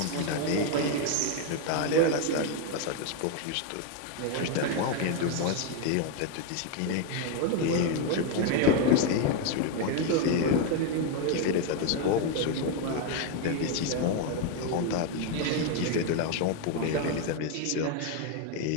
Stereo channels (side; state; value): both; different; correlation 0.01